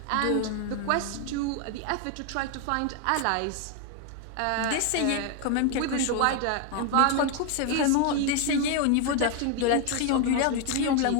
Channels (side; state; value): both; different; correlation 0.00